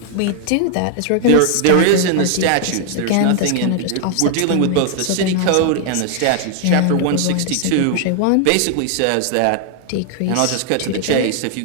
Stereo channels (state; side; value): different; both; correlation 0.00